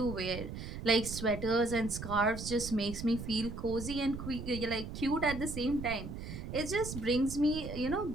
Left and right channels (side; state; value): right; noise; rumble, 8 dB below the sound